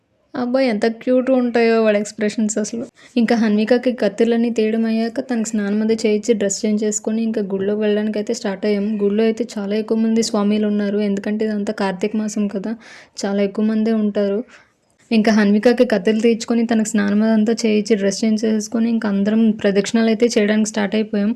అబ్బాయి ఎంత క్యూట్గా ఉంటాయో వాడి ఎక్స్ప్రెషన్స్ అసలు. ఇంకా హన్వికకి కత్తెర్లన్నీ తీయడం అయ్యాక తనకి స్నానం అది చేయించి డ్రెస్ చేంజ్ చేసుకొని ఇంకా గుడిలోకి వెళ్ళడానికి అయితే స్టార్ట్ అయ్యాం. గుడిలో అయితే చాలా ఎక్కువ మంది స్వామీలు ఉన్నారు. ఎందుకంటే ఇదంతా కార్తీక మాసం కదా, చాలా ఎక్కువ మందే ఉంటారు. ఇంకా హన్వికకి కత్తెలు తీర్చుకొని తనకు స్నానం అదంతా చేయించి డ్రెస్ చేంజ్ చేసుకొని ఇంకా అందరం ప్రదక్షిణాలు అయితే చేయడానికి స్టార్ట్ అయిపోయాం.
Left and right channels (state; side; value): identical; both; correlation 1.00